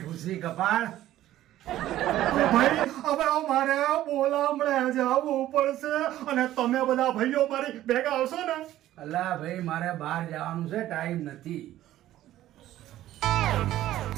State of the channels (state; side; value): quieter; left; 13.8 dB